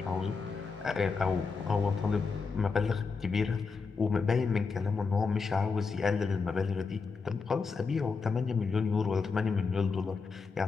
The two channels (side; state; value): right; quieter; 4.9 dB